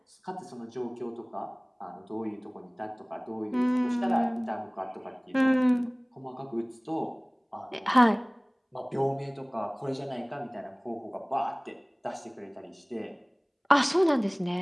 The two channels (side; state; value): both; identical; correlation 1.00